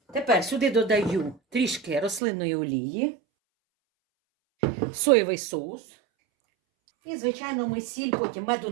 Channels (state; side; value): drops out; left; at 2.2 s